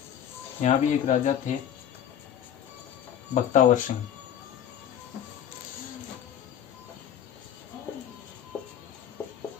यहाँ भी एक राजा थे बख्तावर सिंह।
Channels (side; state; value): right; quieter; 9.7 dB